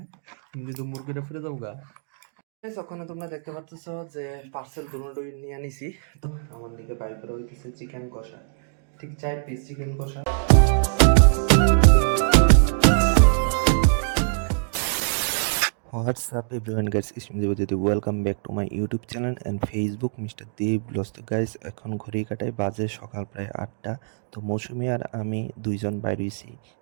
যদি মুরগিটা ফিরে যাবো গা। ওখানে তোমরা দেখতে পাচ্ছ যে পার্সেল দুটোই নিয়ে আনিছি। তো আমার দিকে বাই করে হইতেছে চিকেন কষা, ঠিক 4 পিস চিকেন কষা। What's up everyone guys, it's me Devajyoti. Welcome back to my YouTube channel and Facebook Mr. Dev Vlogs. তো গাইস এখন ঘড়ি কাটায় বাজে সকাল প্রায় 8টা। তো মৌসুমি আর আমি দুইজন বাইরে হইছি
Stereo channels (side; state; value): left; silent; digital silence